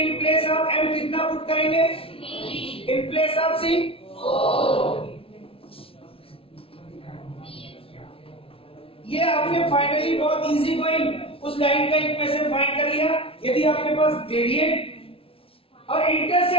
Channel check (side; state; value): right; late; 0.26 ms